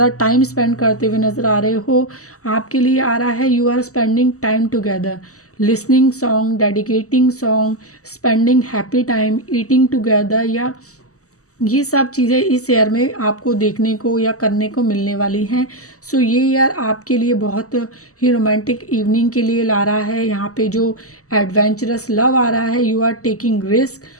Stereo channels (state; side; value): late; right; 0.66 ms